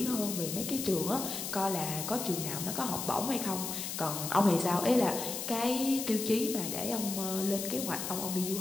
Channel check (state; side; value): noise; left; hiss, 5 dB below the sound